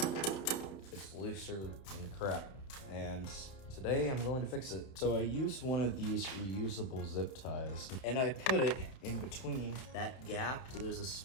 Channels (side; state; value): right; late; 31 ms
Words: it's looser than crap. And today I'm going to fix it. So I used one of these reusable zip ties and I put it in between that gap. So there's a